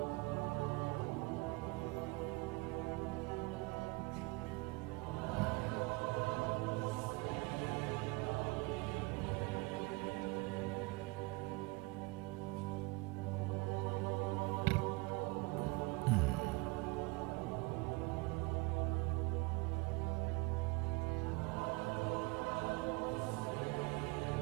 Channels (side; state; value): left; quieter; 24.6 dB